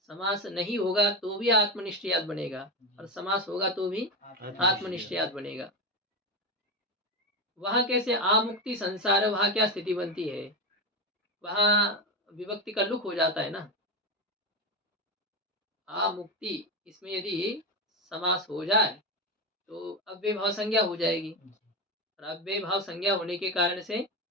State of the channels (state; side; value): normal; both; correlation 0.15